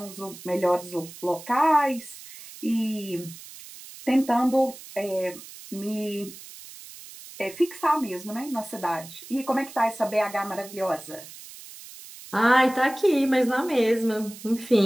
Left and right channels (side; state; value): right; noise; hiss, 16 dB below the sound